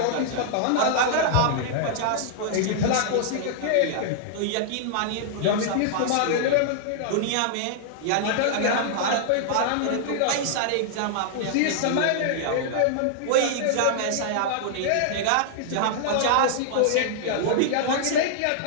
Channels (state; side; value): different; both; correlation -0.01